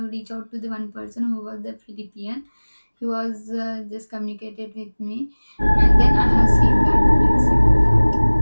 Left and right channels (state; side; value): inverted; both; correlation -1.00